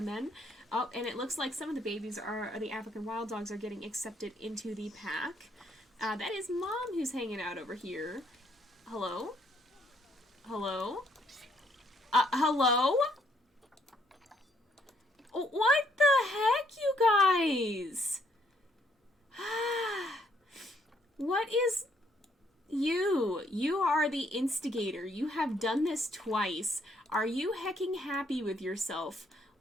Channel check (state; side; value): normal; both; correlation 0.69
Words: then. Oh, and it looks like some of the babies the African wild dogs are getting accepted into the pack. That is Mom who's hanging out over here. Hello? Hello? Hello? What the heck, you guys? What is... You are the instigator. You have done this twice. Are you hecking happy with yourself?